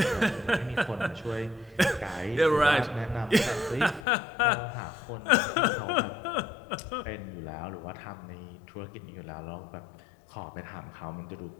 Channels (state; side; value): drops out; right; at 4.0 s